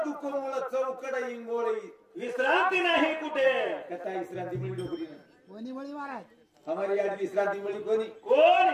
दुःख मूळ चौकड इंगोळी विश्रांती नाही कुठे कथा विश्रांती मिळी डोकरी कोणी मळी महाराज हमारी आज विश्रांती मिळी कोण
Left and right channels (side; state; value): both; identical; correlation 1.00